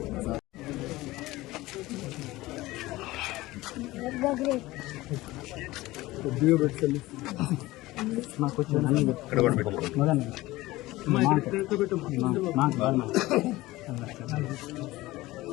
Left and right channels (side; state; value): right; quieter; 18.6 dB